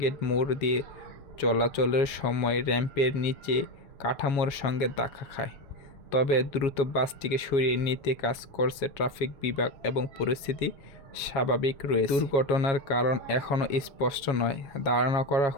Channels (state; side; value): late; right; 7.2 ms